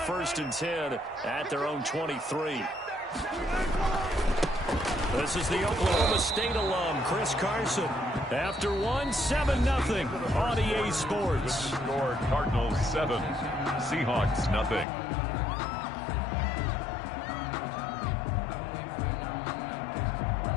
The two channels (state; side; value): drops out; right; at 14.9 s